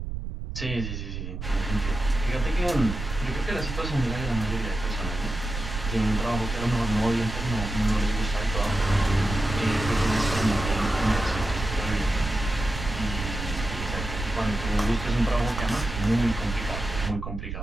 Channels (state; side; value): noise; right; rumble, 6 dB below the sound